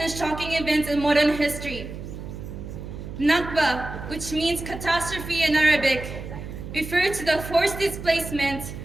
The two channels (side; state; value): right; noise; hum, 10 dB below the sound